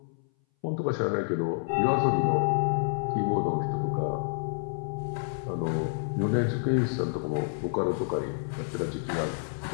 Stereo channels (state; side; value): silent; right; 58 dB below the other